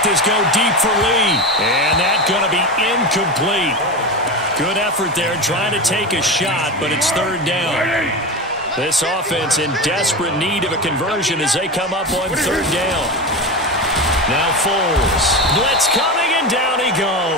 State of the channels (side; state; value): both; normal; correlation 0.22